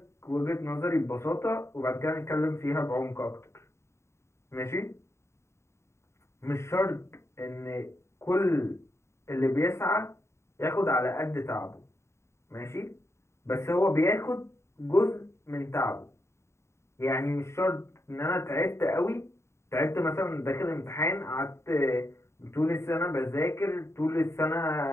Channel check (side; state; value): right; late; 0.13 ms